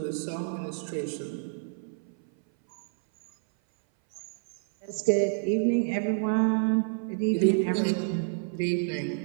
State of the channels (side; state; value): left; silent; 58 dB below the other